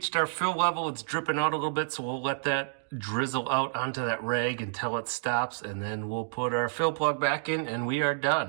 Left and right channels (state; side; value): silent; left; digital silence